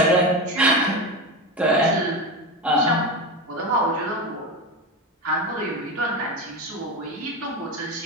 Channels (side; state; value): both; normal; correlation 0.20